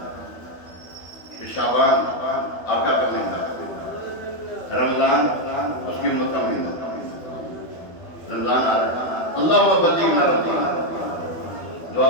شعبان آقا کا مہینہ, رمضان اس کی امت کا مہینہ. رمضان آ رہا ہے. اللہم بلغنا رمضان. دعا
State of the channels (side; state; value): right; late; 12 ms